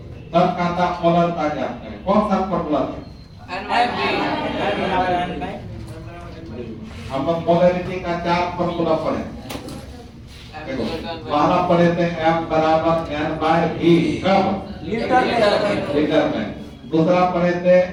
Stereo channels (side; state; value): both; identical; correlation 1.00